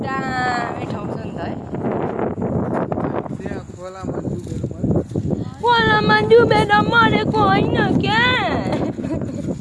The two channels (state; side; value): identical; both; correlation 1.00